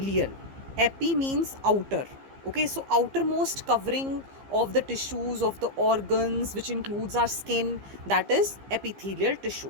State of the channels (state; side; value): late; left; 15 ms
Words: epi means outer. Okay, so outermost covering of the tissues of the organs, which includes our skin, that is epithelial